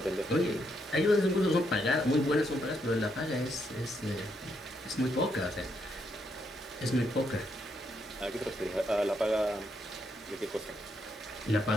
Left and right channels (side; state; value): both; normal; correlation 0.77